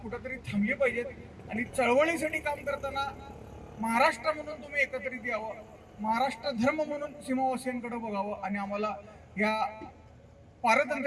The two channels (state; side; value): identical; both; correlation 1.00